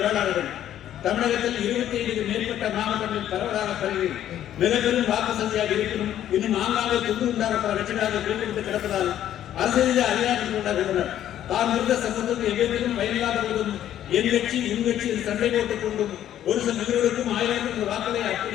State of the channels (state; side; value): quieter; right; 11.4 dB